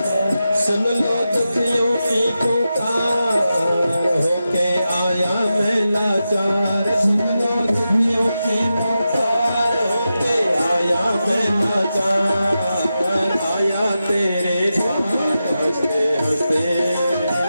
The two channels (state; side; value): inverted; both; correlation -0.90